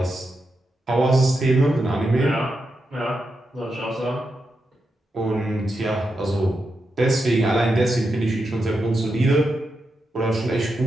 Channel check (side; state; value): both; normal; correlation 0.86